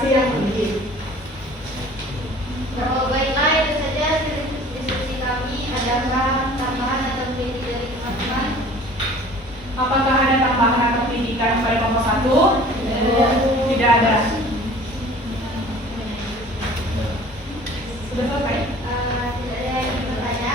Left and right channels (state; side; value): normal; both; correlation 0.47